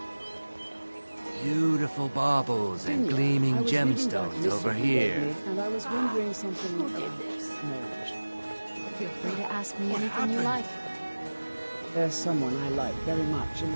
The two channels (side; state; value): both; inverted; correlation -1.00